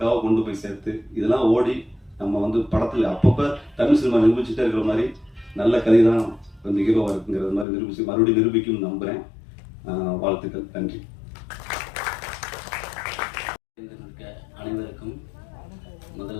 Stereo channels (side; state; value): right; drops out; at 7.7 s